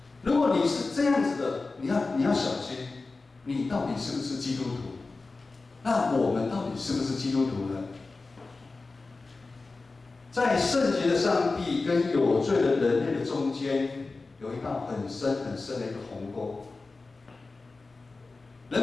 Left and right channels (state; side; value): quieter; right; 3.7 dB